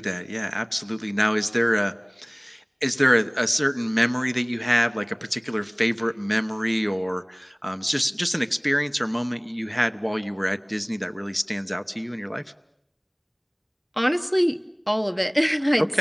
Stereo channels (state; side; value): identical; both; correlation 1.00